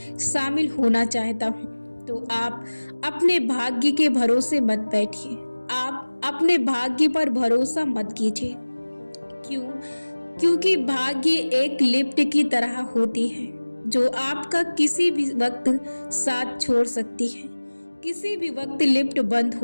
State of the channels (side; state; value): both; inverted; correlation -1.00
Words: शामिल होना चाहता हूं, तो आप अपने भाग्य के भरोसे मत बैठिए। आप अपने भाग्य पर भरोसा मत कीजिए। क्यों? क्योंकि भाग्य एक लिफ्ट की तरह होती है जो आपका किसी भी वक्त साथ छोड़ सकती है। किसी भी वक्त लिफ्ट बंद